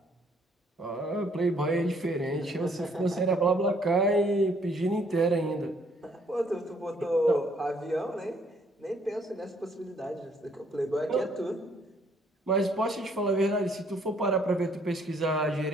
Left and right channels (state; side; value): normal; both; correlation 0.65